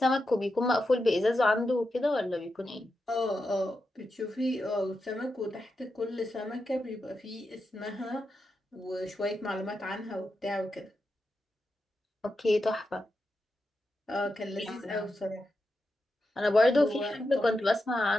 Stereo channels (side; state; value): both; normal; correlation 0.88